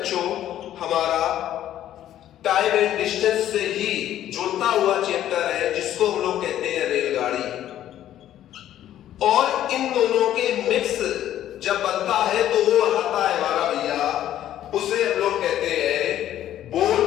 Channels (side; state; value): right; quieter; 12.0 dB